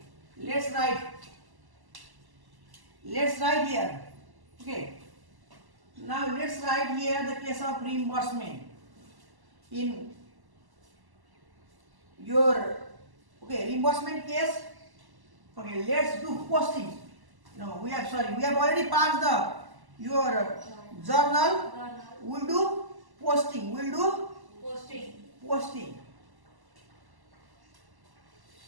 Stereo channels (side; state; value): left; late; 1.1 ms